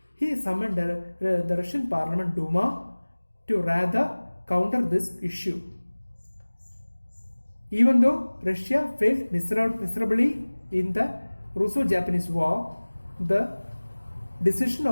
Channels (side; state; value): both; inverted; correlation -1.00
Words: He summoned the Russian parliament Duma to rather counter this issue. Even though Russia failed miserably in the Russo-Japanese War, the decision